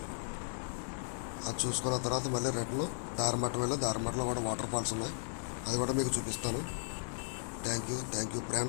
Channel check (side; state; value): right; silent; digital silence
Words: అది చూసుకున్న తర్వాత మళ్ళీ రిటర్న్ దారిమట్టం వెళ్ళి దారిమట్టంలో కూడా వాటర్ ఫాల్స్ ఉన్నాయి. అది కూడా మీకు చూపిస్తాను. Thank you